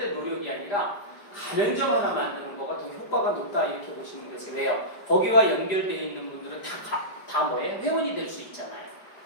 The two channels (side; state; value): right; late; 4.9 ms